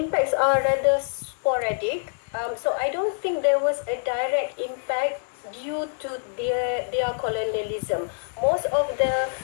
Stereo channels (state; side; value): silent; right; digital silence